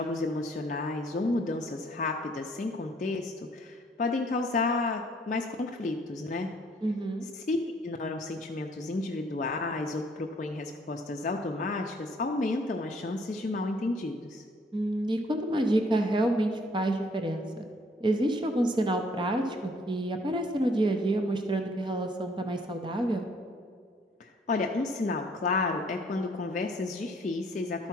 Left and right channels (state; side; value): normal; both; correlation 0.63